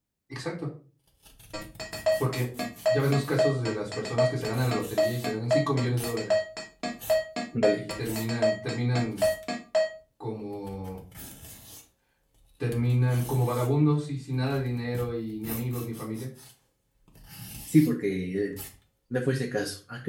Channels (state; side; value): identical; both; correlation 1.00